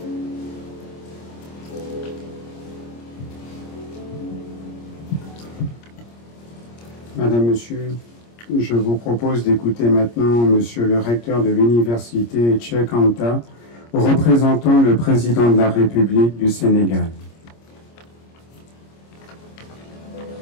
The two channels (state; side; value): late; right; 26 ms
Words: Madame, Monsieur, je vous propose d'écouter maintenant Monsieur le recteur de l'université Cheikh Anta, représentant le président de la République du Sénégal.